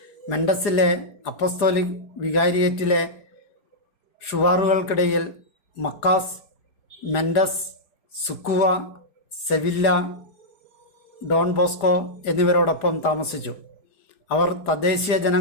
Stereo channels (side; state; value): right; late; 4.7 ms